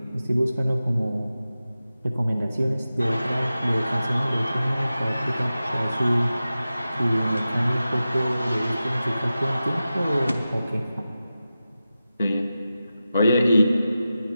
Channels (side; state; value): both; inverted; correlation -0.93